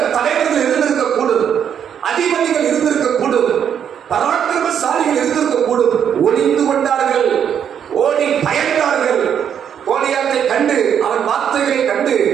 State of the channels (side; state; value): left; quieter; 8.5 dB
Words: தலைவர்கள் இருந்திருக்க கூடும், அதிபதிகள் இருந்திருக்க கூடும், பராக்கிரமசாலிகள் இருந்திருக்க கூடும். ஒளிந்து கொண்டார்கள், ஓடி பயந்தார்கள். கோலியாத்தை கண்டு, அவன் வார்த்தைகளை கண்டு